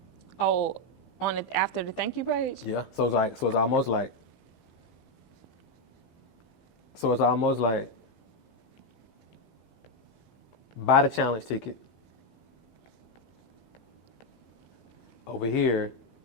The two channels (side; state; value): right; late; 15 ms